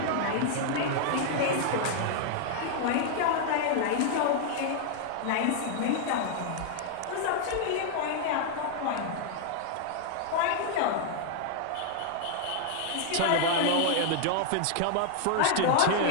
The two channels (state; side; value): different; both; correlation -0.01